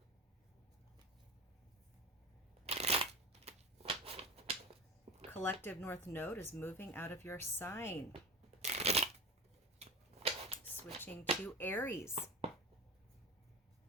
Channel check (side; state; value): both; normal; correlation 0.30